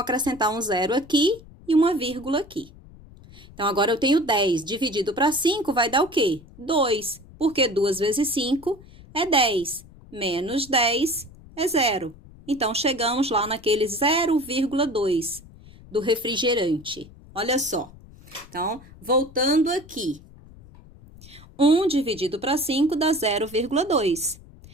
um 0 aqui e uma vírgula aqui. Então, agora eu tenho 10 dividido para 5 vai dar o quê? 2, porque 2 vezes 5 é 10, menos 10 é 0. Então, chegamos lá naquele 0,2 do refrigerante. Olha só, Então, voltando aqui. 1 dividido para 5 dá 0,2.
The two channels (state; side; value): noise; left; rumble, 21 dB below the sound